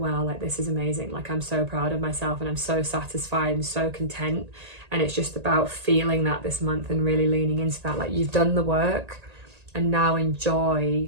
like this is amazing, like I'm so proud of myself and I'm so satisfied and so content. And it's just about feeling that this month and really leaning into that, like you've done the work and now enjoy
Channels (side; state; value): left; late; 1.8 ms